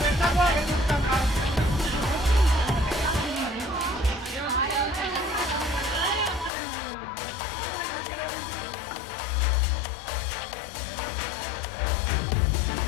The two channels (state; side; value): drops out; right; at 6.5 s